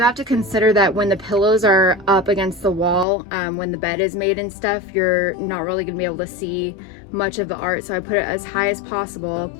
have to consider that when the pillows are up against the wall, when the bed is made and stuff, you're not really gonna be able to see much of the art, so I put it as high as possible.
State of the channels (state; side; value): drops out; right; at 3.1 s